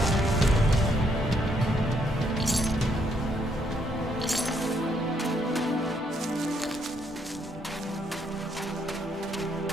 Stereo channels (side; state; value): both; normal; correlation 0.73